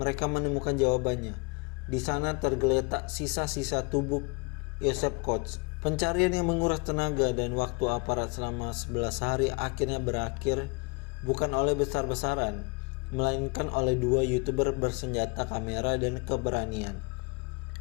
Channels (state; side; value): quieter; right; 31.0 dB